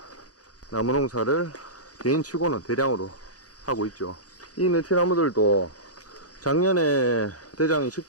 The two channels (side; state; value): right; late; 0.67 ms